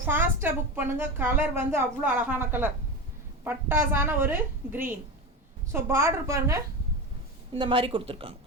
ஃபாஸ்ட்டாக புக் பண்ணுங்கள். கலர் வந்து அவ்வளோ அழகான கலர். பட்டாசான ஒரு க்ரீன். ஸோ பார்டர் பாருங்கள், இந்த மாதிரி கொடுத்துருக்காங்க.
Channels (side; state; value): both; normal; correlation 0.22